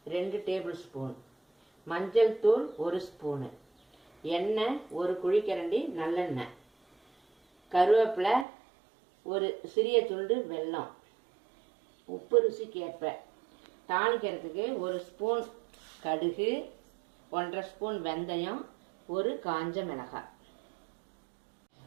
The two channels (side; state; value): left; drops out; at 8.5 s